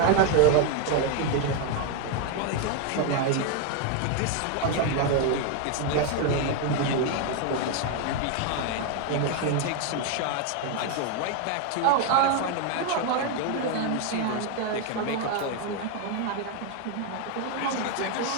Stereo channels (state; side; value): different; both; correlation 0.01